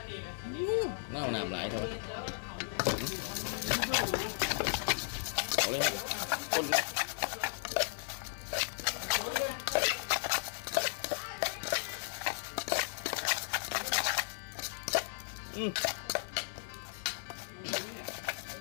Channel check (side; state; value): right; silent; digital silence